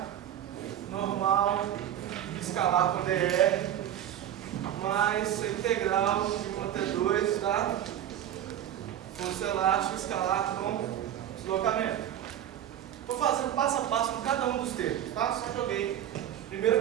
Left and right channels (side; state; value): left; quieter; 11.0 dB